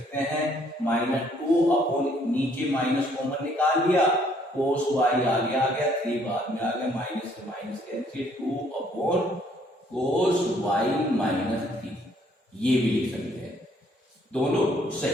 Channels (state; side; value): normal; both; correlation 0.64